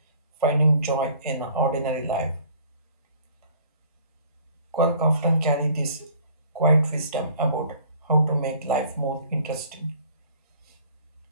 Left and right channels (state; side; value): inverted; both; correlation -0.54